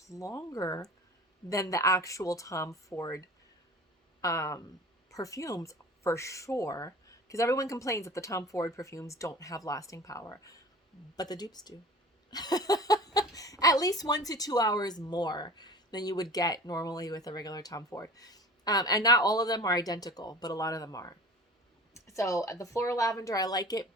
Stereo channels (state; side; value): normal; both; correlation 0.40